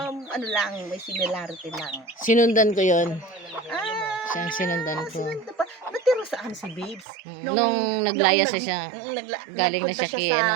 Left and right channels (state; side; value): drops out; left; at 7.1 s